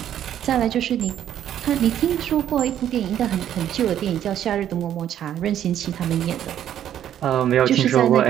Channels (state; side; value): quieter; left; 10.6 dB